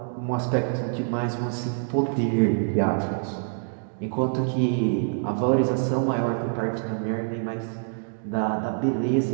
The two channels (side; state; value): left; silent; digital silence